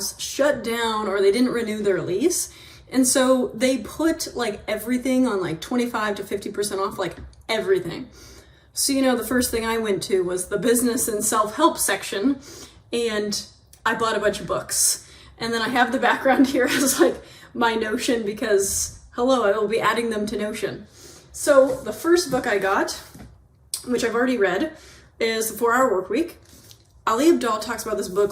shut down or they didn't renew their lease. And so they put like everything on like 25 to 50% off, like everything. So, the first thing I went to was the business and self-help section, and I bought a bunch of books. And then I have the background here as like my Notion because, hello, I will be adding them to Notion. So the first book I got, which I've already read, is The 4-Hour Workweek. Ali Abdaal talks about this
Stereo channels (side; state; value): both; identical; correlation 1.00